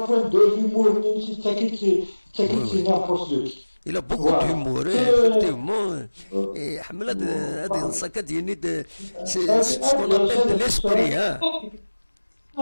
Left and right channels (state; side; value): inverted; both; correlation -1.00